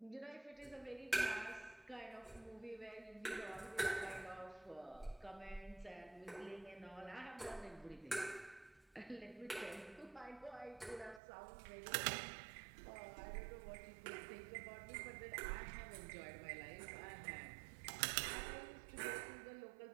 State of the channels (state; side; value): drops out; left; at 11.2 s